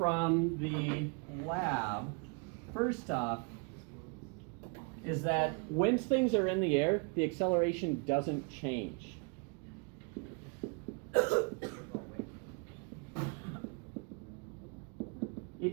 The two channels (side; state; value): left; quieter; 33.6 dB